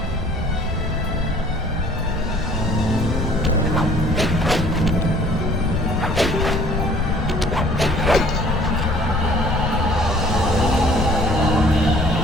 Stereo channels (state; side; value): noise; left; rumble, 4 dB below the sound